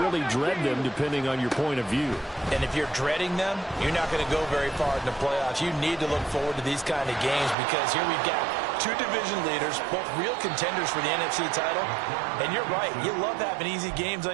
really dread them, depending on your point of view. And if you're dreading them, you're not going to go very far in the playoffs. You need to look forward to these kind of games because here we've got 2 division leaders, both real contenders for the NFC title. And you're right, you love having easy games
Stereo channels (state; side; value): drops out; left; at 7.6 s